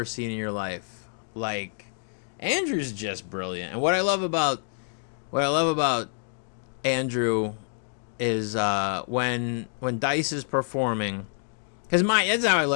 seen in your life. Like, Andrew's just brilliant. And what I love about Andrew is when Dice is performing, because that's how I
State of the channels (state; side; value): silent; right; 60 dB below the other